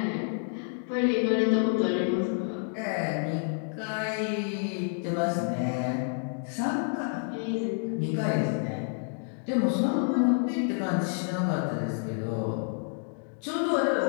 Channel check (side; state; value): right; silent; 59 dB below the other